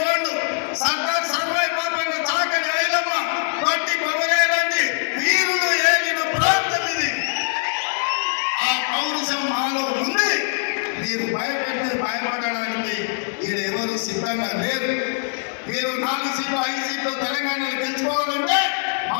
గోండు, సర్దార్ సర్వాయి పాపన్న చాకలి ఐలమ్మ వంటి కొమరేలాంటి వీరులు ఏలిన ప్రాంతం ఇది. ఆ పౌరుషం మాలో ఉంది. మీరు భయపడడానికి ఎవరు సిద్ధంగా లేరు. మీరు 4 సీట్లు 5 సీట్లు తెలంగాణలో గెలుచుకోవాలంటే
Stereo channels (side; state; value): right; silent; 56 dB below the other